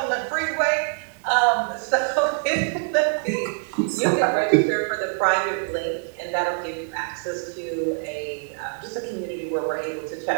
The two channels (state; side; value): silent; left; 61 dB below the other